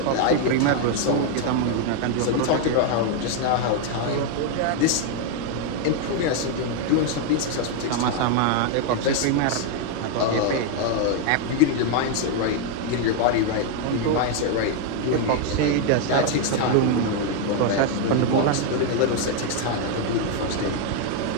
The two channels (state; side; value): different; both; correlation 0.01